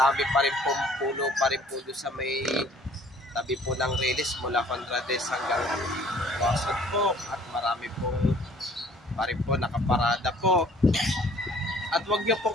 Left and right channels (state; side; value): normal; both; correlation 0.55